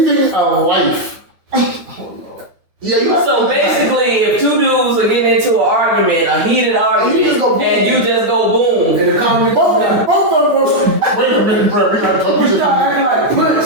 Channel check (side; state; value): left; late; 9.5 ms